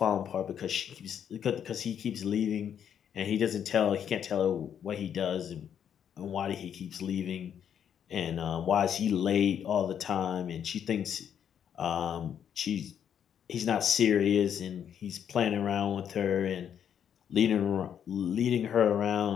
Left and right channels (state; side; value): quieter; right; 8.8 dB